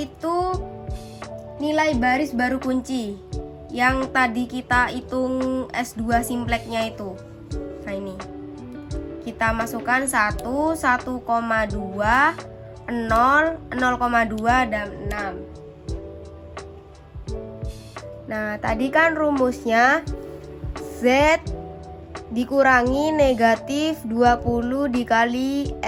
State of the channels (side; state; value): both; identical; correlation 1.00